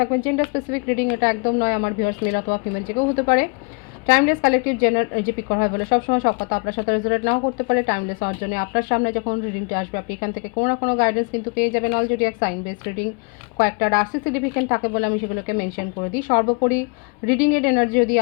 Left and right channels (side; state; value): right; quieter; 33.8 dB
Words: জেন্ডার স্পেসিফিক রিডিং এটা একদম নয়। আমার ভিউয়ার্স মেল অথবা ফিমেল যে কেউ হতে পারে। টাইমলেস কালেকটিভ জেনার যে পিক করা হয় বলে সবসময় সব কথা আপনার সাথে রেজোনেট নাও করতে পারে। টাইমলেস হওয়ার জন্য আপনার সামনে যখন রিডিংটা আসবে আপনি এখান থেকে কোনো না কোনো গাইডেন্স কিন্তু পেয়ে যাবেন। অলরেডি এক সাইন বেস রিডিং কয়েকটা রাশি সিগনিফিকেন্ট থাকে বলে আমি সেগুলোকে মেনশন করে দিই। সর্বোপরি রিডিংয়ের এনার্জি যদি